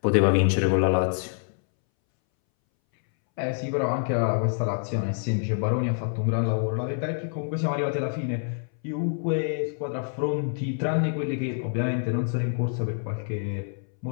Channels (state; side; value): silent; right; 61 dB below the other